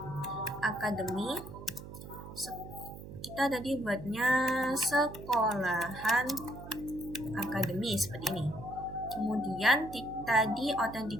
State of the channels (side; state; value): right; noise; hum, 13 dB below the sound